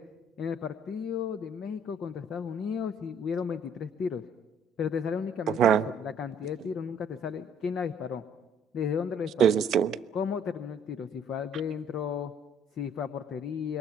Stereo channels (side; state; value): both; normal; correlation 0.60